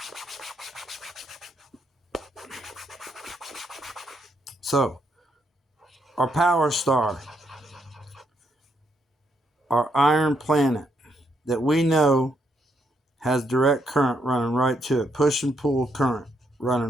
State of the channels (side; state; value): both; normal; correlation 0.76